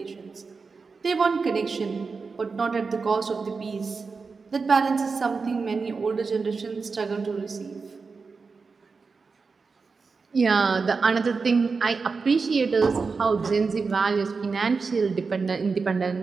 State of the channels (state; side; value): quieter; left; 4.7 dB